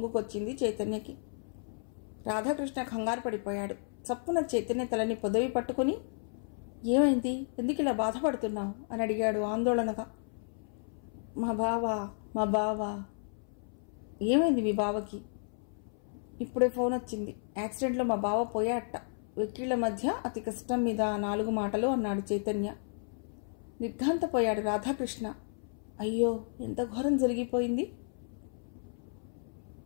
చైతన్యకి. రాధాకృష్ణ కంగారు పడిపోయాడు. చప్పున చైతన్య తలని పొదవి పట్టుకుని, ఏమైంది? ఎందుకు ఇలా బాధపడుతున్నావు అని అడిగాడు ఆందోళనగా. మా బావ ఏమైంది మీ బావకి? ఇప్పుడే ఫోన్ వచ్చింది. యాక్సిడెంట్లో మా బావ పోయాట. వెక్కిళ్ల మధ్య అతి కష్టం మీద 4 మాటలు అన్నాడు చైతన్య. నిర్ఘాంతపోయాడు రాధాకృష్ణ. అయ్యో, ఎంత ఘోరం జరిగిపోయింది.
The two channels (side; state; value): right; silent; 56 dB below the other